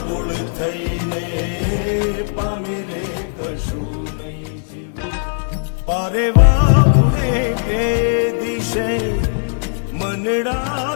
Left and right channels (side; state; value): right; silent; digital silence